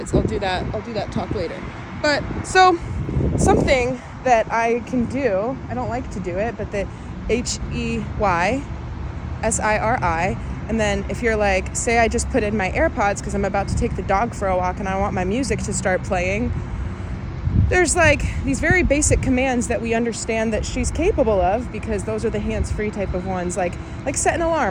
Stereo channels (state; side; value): identical; both; correlation 1.00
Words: I'll do that talk later. But so something that I can do, I don't like to do it, but the HEYSIRI, and then if you're like, say I just put in my AirPods because I'm about to take the dog for a walk and I want my music to start playing, there's like these very basic commands that we understand that she's capable of, because those are the hands-free type of ones, like set an